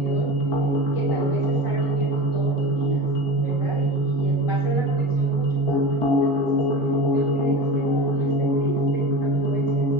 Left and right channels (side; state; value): left; late; 1.4 ms